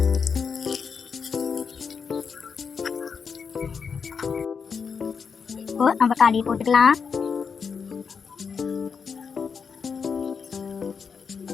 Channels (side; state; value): right; quieter; 6.0 dB